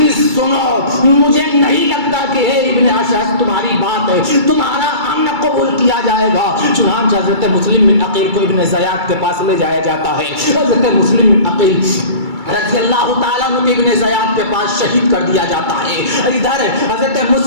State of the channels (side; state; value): left; late; 2.3 ms